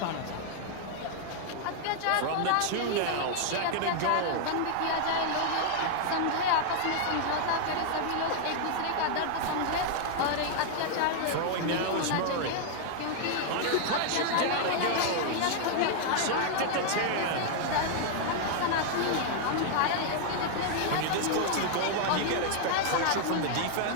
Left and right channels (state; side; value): different; both; correlation 0.00